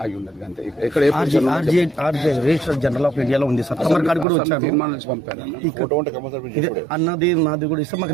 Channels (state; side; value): drops out; left; at 4.2 s